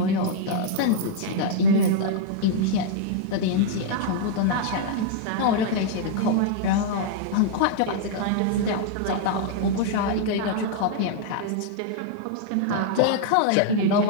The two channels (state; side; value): different; both; correlation -0.01